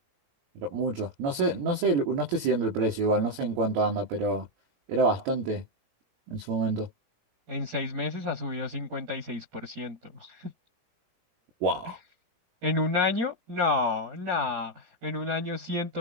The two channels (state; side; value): late; left; 17 ms